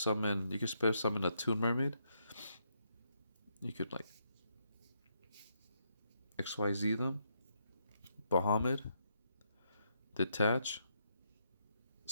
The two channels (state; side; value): inverted; both; correlation -0.77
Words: You can special summon a Toon Mermaid. You could, like, XYZ them. Bahamut. Detach.